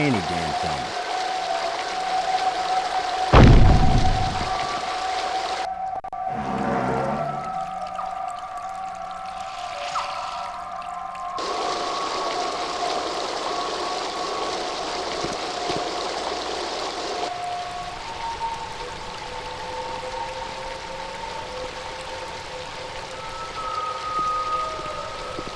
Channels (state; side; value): identical; both; correlation 1.00